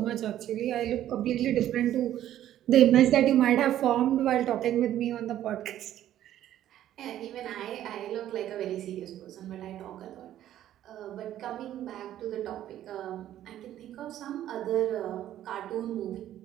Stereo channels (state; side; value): quieter; left; 12.2 dB